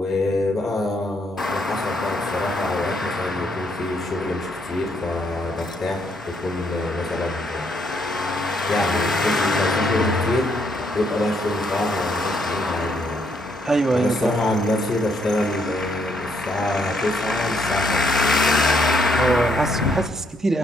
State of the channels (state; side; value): normal; both; correlation 0.73